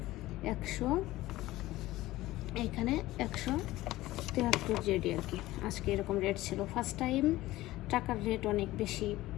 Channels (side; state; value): right; quieter; 17.1 dB